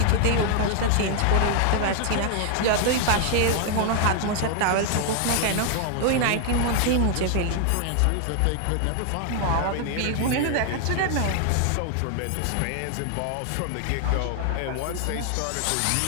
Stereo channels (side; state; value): both; different; correlation 0.00